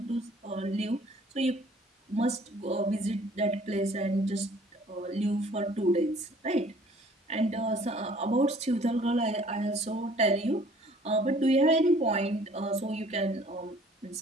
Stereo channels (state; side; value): normal; both; correlation 0.55